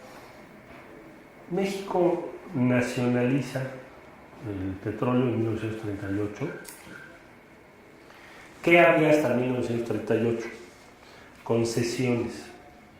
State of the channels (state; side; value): identical; both; correlation 1.00